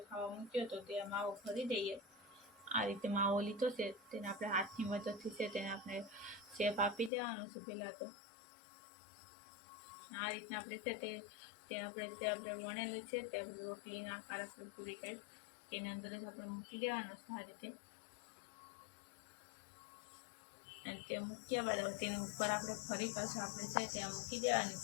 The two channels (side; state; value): right; drops out; at 7.1 s